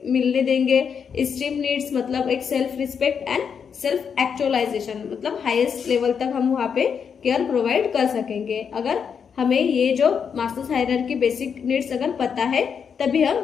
मिलने देंगे, स्ट्रीम नीड्स मतलब एक self respect and self actualisation मतलब हाईएस्ट लेवल तक हम वहाँ पे केयर प्रोवाइड कर सकेंगे। अगर हमें ये जो मास्लोस हायरार्की बेसिक नीड्स अगर पता है तभी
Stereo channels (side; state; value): right; quieter; 6.8 dB